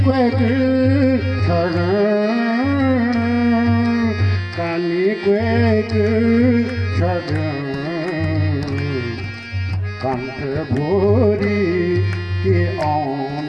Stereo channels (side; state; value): both; identical; correlation 1.00